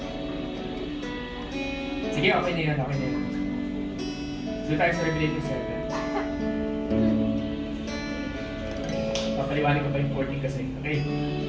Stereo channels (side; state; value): both; identical; correlation 1.00